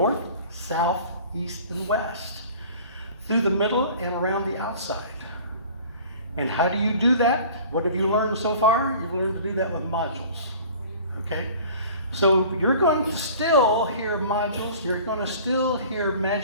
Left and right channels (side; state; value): both; inverted; correlation -0.45